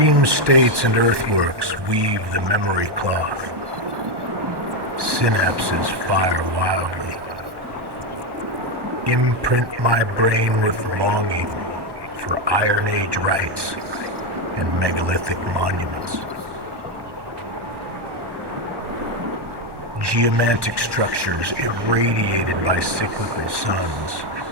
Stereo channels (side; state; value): left; late; 1.1 ms